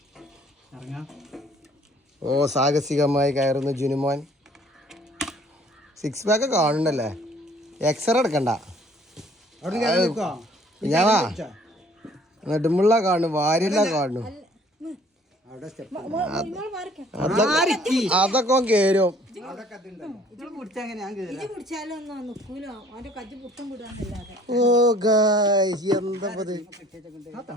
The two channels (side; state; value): both; normal; correlation 0.56